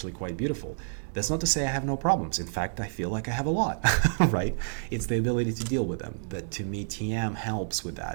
quite beautiful. That's not to say I have no problems. In fact, I feel like I have a lot, right? It's the ability to deal with them. But to me, TM helps with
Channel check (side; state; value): left; silent; digital silence